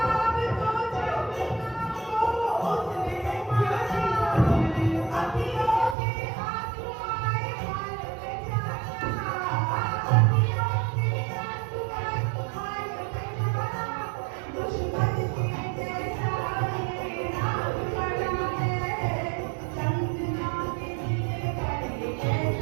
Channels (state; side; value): drops out; left; at 6.0 s